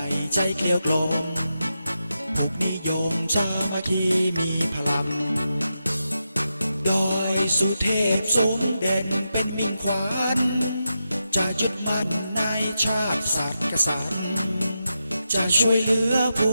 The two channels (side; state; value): both; inverted; correlation -0.88